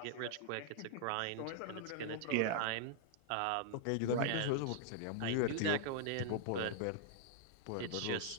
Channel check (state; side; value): different; both; correlation -0.01